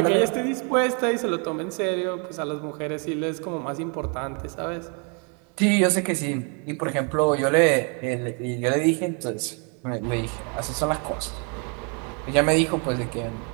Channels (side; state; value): left; quieter; 36.8 dB